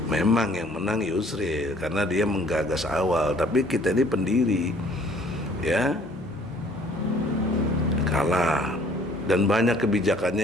Memang yang menang Yusril karena dia menggagas awal, tapi kita ini pendiri ya kalah, dan banyak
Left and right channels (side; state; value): both; normal; correlation 0.57